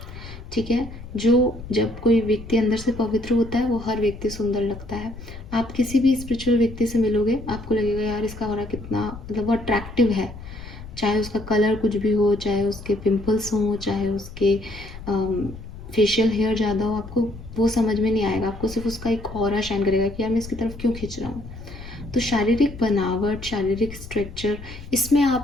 ठीक है। जब कोई व्यक्ति अंदर से पवित्र होता है वो हर व्यक्ति सुंदर लगता है। आप किसी भी स्पिरिचुअल व्यक्ति से मिलोगे आपको लगेगा यार इसका ऑरा कितना मतलब वो अट्रैक्टिव है, चाहे उसका कलर कुछ भी हो, चाहे उसके पिंपल्स हों, चाहे उसके फेशियल हेयर ज़्यादा हो, आपको वो समझ में नहीं आएगा। आपको सिर्फ उसका एक ऑरा शाइन करेगा कि यार मैं इसकी तरफ क्यों खींच रहा हूँ। तो शारीरिक बनावट, शारीरिक स्ट्रक्चर, इसमें आप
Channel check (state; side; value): noise; left; rumble, 13 dB below the sound